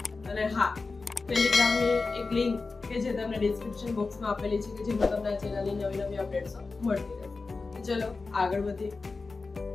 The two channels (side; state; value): right; quieter; 4.0 dB